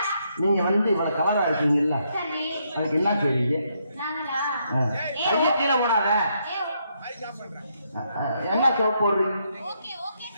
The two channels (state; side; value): inverted; both; correlation -0.76